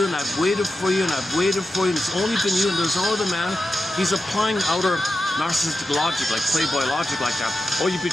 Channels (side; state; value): both; normal; correlation 0.91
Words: and I've waited for you, and I've waited for you, and it's only been you, and there's no other man. He's applying outer narcissistic logic, like Playboy logic like that. Oh, you